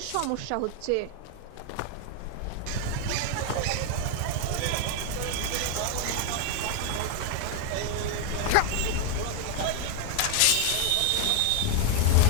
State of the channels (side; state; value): both; different; correlation 0.01